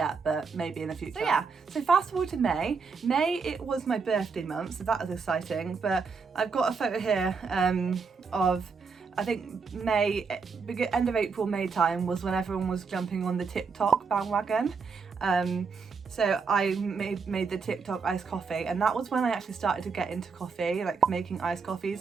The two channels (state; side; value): quieter; left; 5.2 dB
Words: but maybe in the future. So yeah, so fast forward to May. May, it was my birthday month, so that was exciting, but I've got a photo here of, I think May, end of April, May time was when everyone was jumping on the TikTok bandwagon. So I made the TikTok iced coffee, and that was when I actually started to get into coffee, like making iced